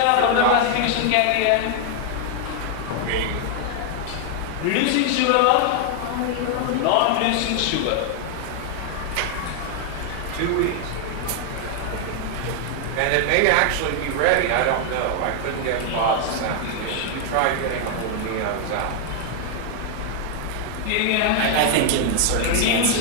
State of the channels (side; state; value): both; different; correlation 0.00